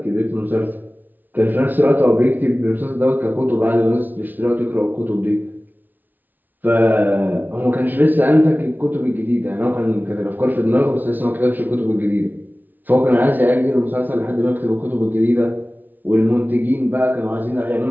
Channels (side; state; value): left; late; 0.085 ms